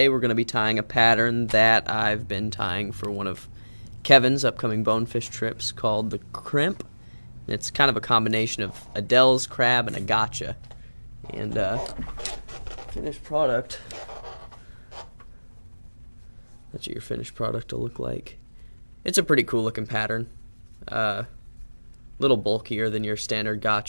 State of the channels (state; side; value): inverted; both; correlation -1.00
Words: we're going to be tying a pattern that I've been tying for one of Kevin's upcoming bonefish trips called the Crimp. It's kind of a combination of a Dell's crab and a gotcha. And finished product, that's what your finished product will look like. It's a pretty cool looking pattern. Little bulkier than your standard